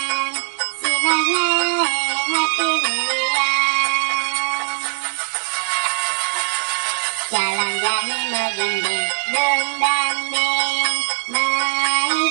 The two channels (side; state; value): left; silent; digital silence